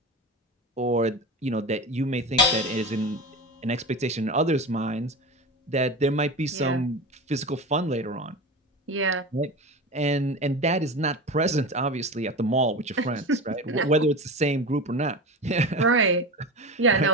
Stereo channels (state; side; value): normal; both; correlation 0.27